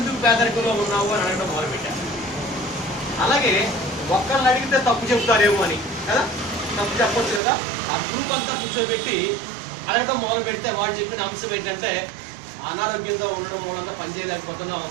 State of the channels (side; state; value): left; drops out; at 7.4 s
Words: పేదరికంలో ఉన్నావు అని అడగడం మొదలుపెట్టాను. అలాగే ఒక్కరిని అడిగితే తప్పు చెప్తారేమో అని కదా, తప్పు చెప్పొచ్చు కదా. ఆ గ్రూప్ అంతా కూర్చోబెట్టి అడగడం మొదలు పెడితే వాళ్ళు చెప్పిన అంశం ఏంటంటే అనారోగ్యంతో ఉండడం మూలంగా పనిచేయలేకపోతున్నాం,